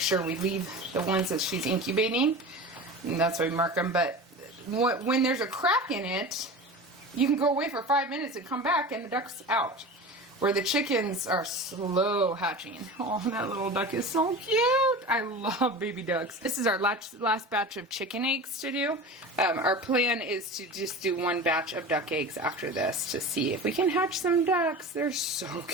we leave the ones that she's incubating. And that's why we mark them. But when there's a crack in it, you can go away for 5 minutes and come back and the duck's out. Where the chickens are slow hatching. Oh, that little duck is so cute. I love baby ducks. This is our last batch of chicken eggs to do. Our plan is to just do one batch of duck eggs after this to see if we can hatch some ducks. They're so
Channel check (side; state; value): both; normal; correlation 0.32